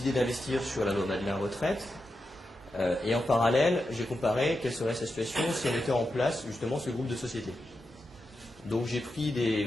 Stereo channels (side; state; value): both; normal; correlation 0.88